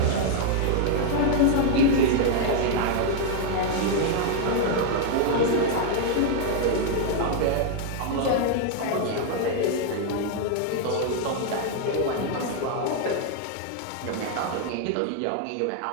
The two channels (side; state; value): both; different; correlation 0.00